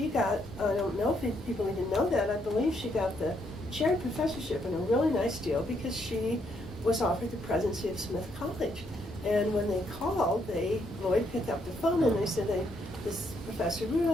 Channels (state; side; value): normal; both; correlation 0.74